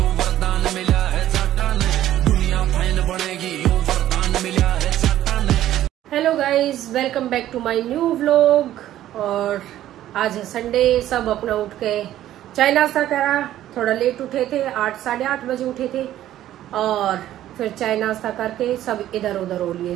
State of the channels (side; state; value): left; quieter; 12.9 dB